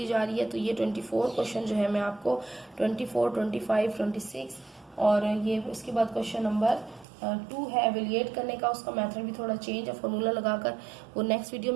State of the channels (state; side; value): drops out; left; at 7.1 s